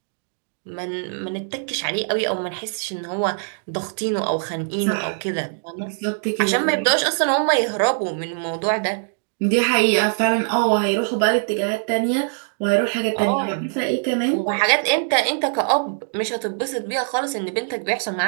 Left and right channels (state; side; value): silent; left; digital silence